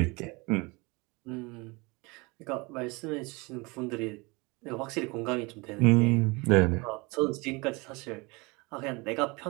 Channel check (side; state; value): left; quieter; 26.5 dB